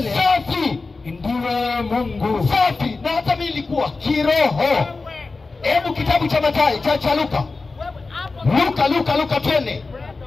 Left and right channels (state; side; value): quieter; right; 3.8 dB